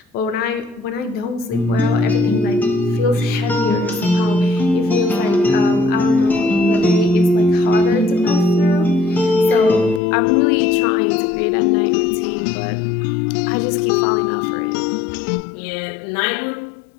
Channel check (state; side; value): drops out; right; at 10.0 s